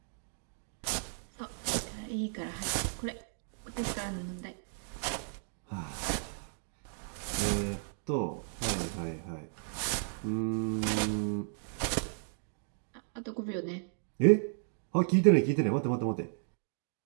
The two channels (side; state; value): left; silent; digital silence